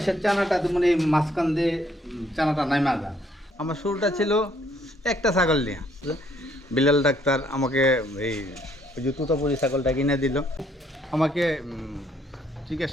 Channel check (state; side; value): normal; both; correlation 0.67